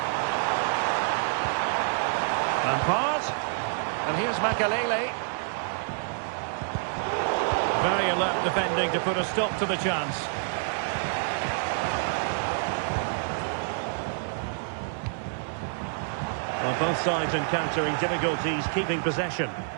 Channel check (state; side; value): silent; left; 60 dB below the other